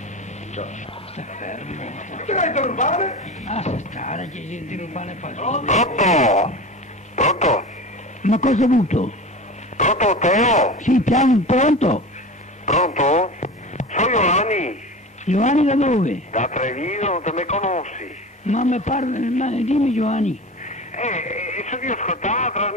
Sta fermo. Te l'hai interrubare? Ah, sta stare, che si interrubare fa. Pronto? Pronto? Ma cosa hai avuto? Pronto Teo? Sì, piano, pronto? Pronto? Sono Giovanni, Giovanni da dove? da Treviso, non te me conosci? Ma mi parla, dimmi Giovanni. So che ho ascoltato la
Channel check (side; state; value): both; normal; correlation 0.31